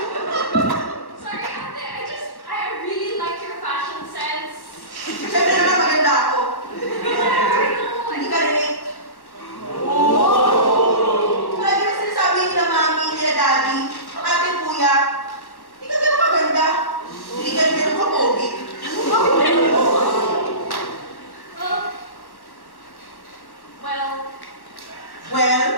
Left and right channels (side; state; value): right; late; 1.1 ms